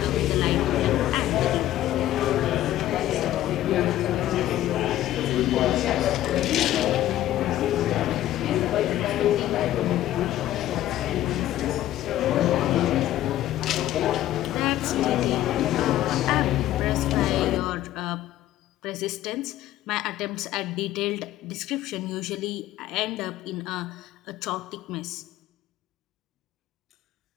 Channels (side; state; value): right; quieter; 13.5 dB